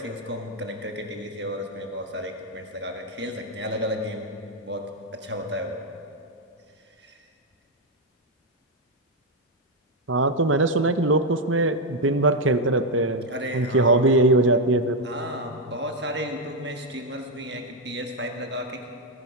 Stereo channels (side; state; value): both; normal; correlation 0.03